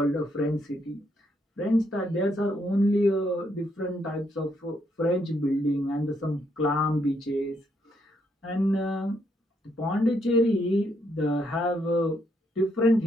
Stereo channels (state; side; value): normal; both; correlation 0.74